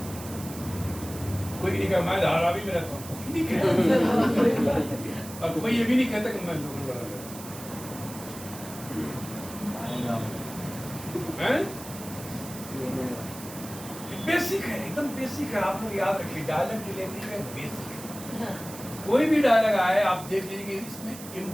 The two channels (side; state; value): right; noise; hiss, 14 dB below the sound